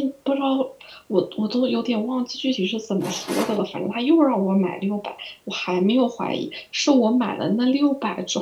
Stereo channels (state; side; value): identical; both; correlation 1.00